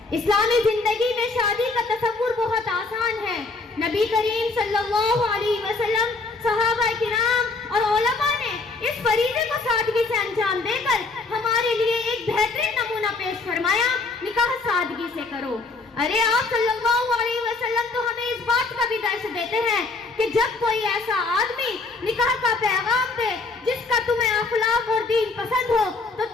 اسلامی زندگی میں شادی کا تصور بہت آسان ہے۔ نبی کریم صلی اللہ علیہ وسلم، صحابہ کرام اور علماء نے اس فریضے کو سادگی سے انجام دے کر ہمارے لیے ایک بہترین نمونہ پیش فرمایا، نکاح سادگی سے کرو۔ ارے آپ صلی اللہ علیہ وسلم تو ہمیں اس بات کا بھی درس دیتے ہیں کہ جب کوئی ایسا آدمی نکاح کا پیغام دے جس کا تمہیں اخلاق اور دین پسند ہو تو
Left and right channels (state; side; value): quieter; right; 3.7 dB